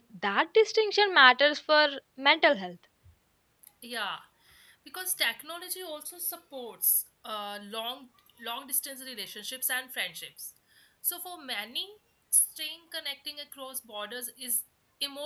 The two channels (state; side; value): identical; both; correlation 1.00